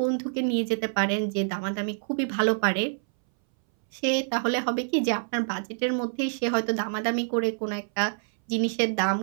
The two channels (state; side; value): silent; left; 60 dB below the other